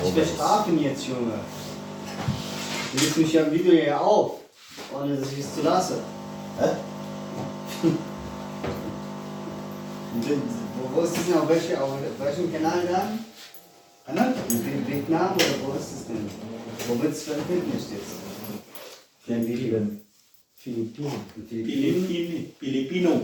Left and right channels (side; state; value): both; identical; correlation 1.00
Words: Wir guys. schlafen jetzt, Junge. Du legst mich ja im Video ja auf, ohne dass ich es zu lasse. Hä? Wo ist das denn? Auf welchem Kanal dann? Ano? In Vietnam oder wo ist das denn? Wo wird es veröffentlicht jetzt? Für ein Video. Filipino.